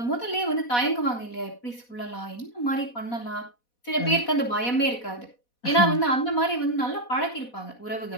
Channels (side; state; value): right; late; 4.1 ms